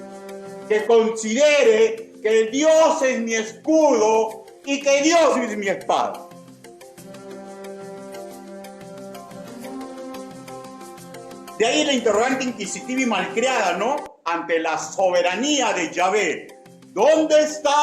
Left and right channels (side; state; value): both; identical; correlation 1.00